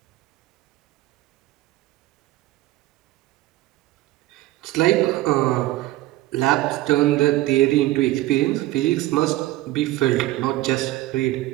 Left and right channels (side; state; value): left; quieter; 16.7 dB